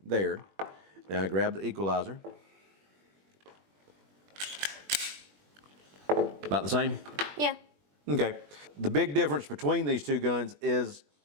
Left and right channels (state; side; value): late; left; 21 ms